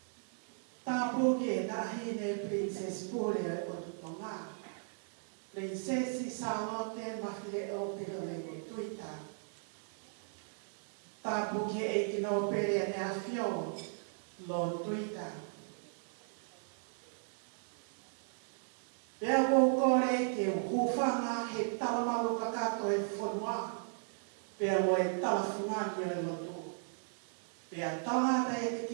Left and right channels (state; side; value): silent; left; digital silence